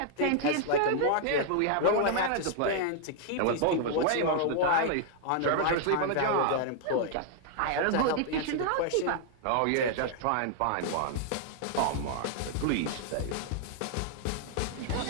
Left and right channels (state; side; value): different; both; correlation -0.01